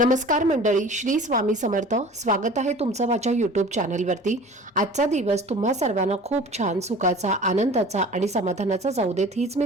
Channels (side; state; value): both; normal; correlation 0.42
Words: मंडळी, श्री स्वामी समर्थ. स्वागत आहे तुमचं माझ्या यूट्यूब चॅनलवरती. आजचा दिवस तुम्हा सर्वांना खूप छान, सुखाचा, आनंदाचा आणि समाधानाचा जाऊ देत, हीच मी